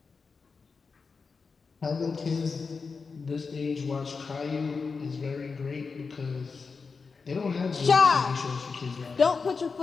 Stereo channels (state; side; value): quieter; right; 4.9 dB